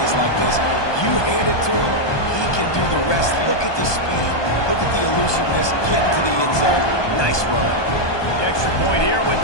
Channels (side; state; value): right; late; 1.2 ms